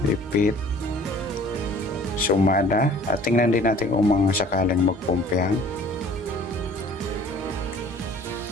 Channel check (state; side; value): normal; both; correlation 0.51